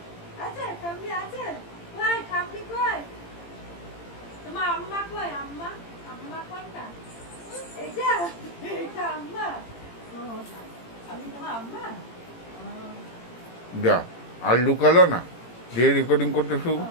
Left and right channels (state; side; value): late; right; 18 ms